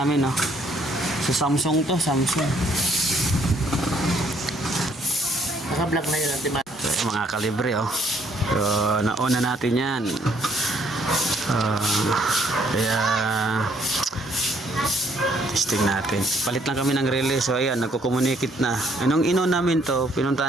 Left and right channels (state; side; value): normal; both; correlation 0.66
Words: sa Samsung to. Samsung. Naka-vlog na yun. So, mga kalibre So, nauna natin yan. Kaya testing natin. Palit lang kami ng relay. So, ayan, nagko-communicate na. Anong namin to,